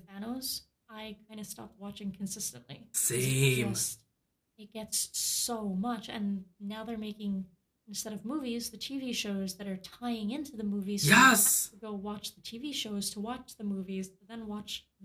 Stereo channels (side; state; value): both; identical; correlation 1.00